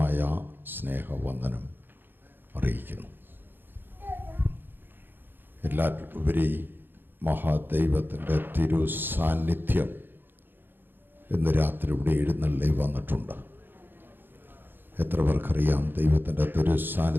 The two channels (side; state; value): left; late; 0.097 ms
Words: സ്നേഹവന്ദനം അറിയിക്കുന്നു. എല്ലാറ്റിലുപരി മഹാദൈവത്തിൻ്റെ തിരു സാന്നിധ്യം ഇന്ന് രാത്രി ഇവിടെ എഴുന്നള്ളി വന്നിട്ടുണ്ട്. എത്ര പേർക്കറിയാം ദൈവത്തിൻ്റെ തിരു